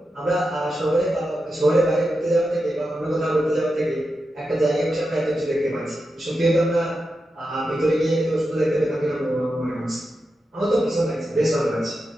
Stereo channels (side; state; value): both; normal; correlation 0.89